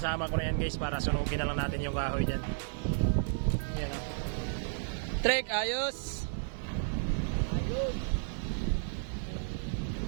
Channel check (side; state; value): left; silent; digital silence